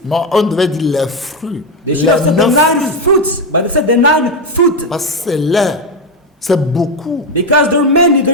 Non, on devait dire les fruits. They Les should have said the 9 9 fruits. fruits, but they said the 9 fruit. Parce que c'est l'air. C'est beaucoup. Because there are many,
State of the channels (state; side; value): normal; both; correlation 0.09